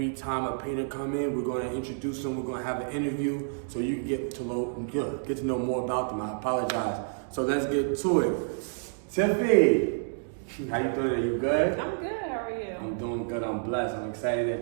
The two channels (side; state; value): left; silent; digital silence